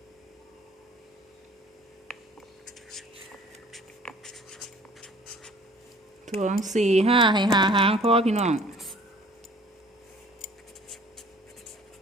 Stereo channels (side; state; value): both; normal; correlation 0.52